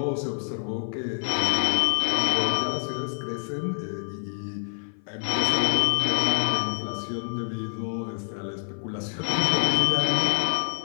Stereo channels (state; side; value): silent; right; 56 dB below the other